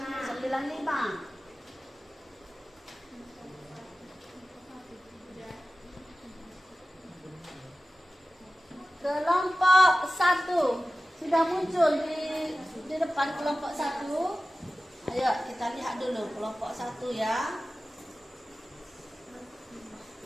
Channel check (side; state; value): both; normal; correlation 0.95